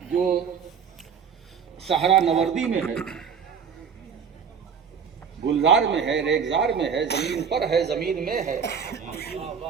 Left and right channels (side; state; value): left; quieter; 6.8 dB